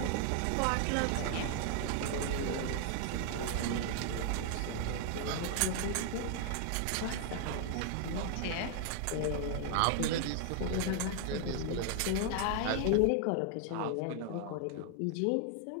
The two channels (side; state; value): both; different; correlation 0.00